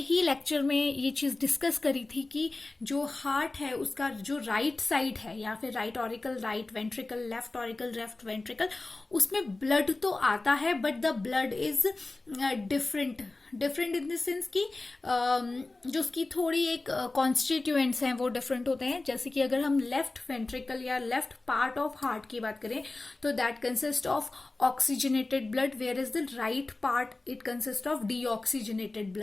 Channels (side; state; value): right; quieter; 3.2 dB